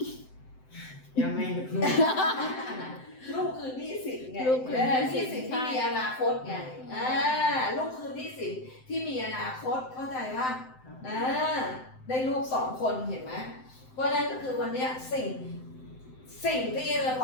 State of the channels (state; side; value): late; right; 7.8 ms